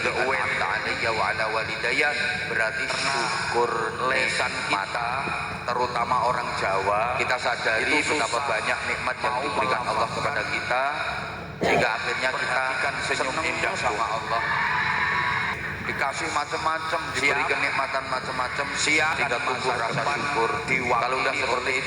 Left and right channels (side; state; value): both; identical; correlation 1.00